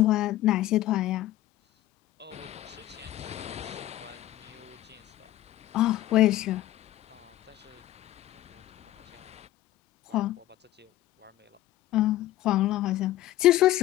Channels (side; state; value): right; quieter; 14.9 dB